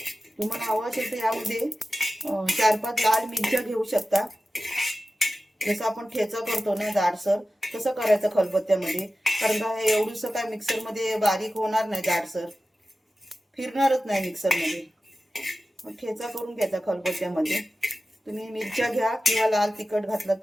तुम्हाला हवं असेल तर यामध्ये 4-5 लाल मिरच्या घेऊ शकता. जसं आपण ठेचा करतो ना जाडसर, तसं करायचं खलबत्त्यामध्ये. कारण का हे एवढंसं काय मिक्सरमध्ये बारीक होणार नाही, जाडसर फिरणारच नाही मिक्सरमध्ये. मग ठेचा करून घ्यायचा खलबत्त्यामध्ये. तुम्ही मिरच्या घ्या किंवा लाल तिखट घातलं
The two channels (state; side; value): normal; both; correlation 0.95